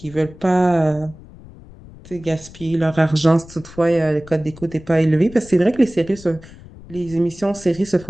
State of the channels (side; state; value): left; noise; rumble, 19 dB below the sound